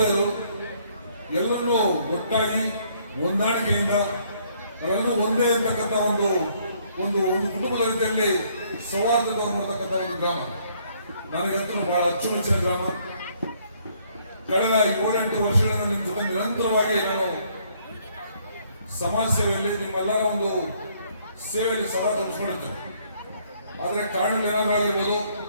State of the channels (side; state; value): both; inverted; correlation -0.66